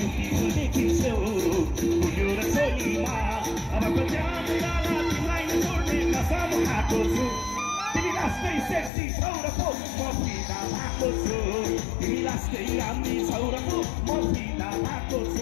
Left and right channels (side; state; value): right; drops out; at 8.9 s